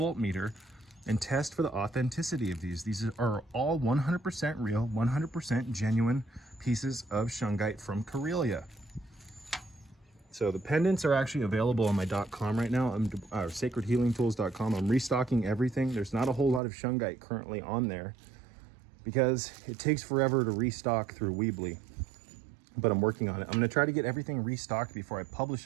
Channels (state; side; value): drops out; left; at 16.6 s